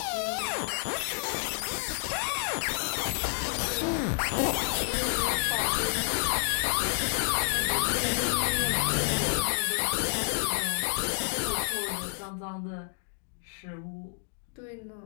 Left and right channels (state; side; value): silent; right; digital silence